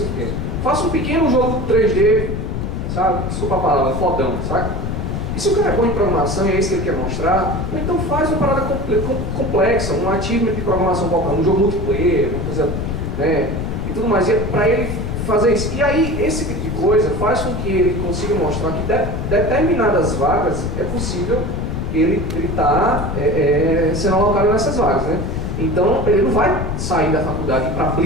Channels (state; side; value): noise; left; rumble, 3 dB below the sound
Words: Faça um pequeno jogo 3D, sabe? Desculpa a palavra, fodão, sabe? E se o cara é bom em programação e é isso que ele quer mostrar, então faz uma parada complexa, um achievement de programação qualquer, um jogo multiplayer, uma coisa, né? E tudo mais. E para ele fazer isso. E aí, esse tipo de coisa faz com que ele consiga mostrar que determinadas vagas é possível ele estar sendo alocado nessas vagas, né? Então, ele não vai sair da faculdade e ir para a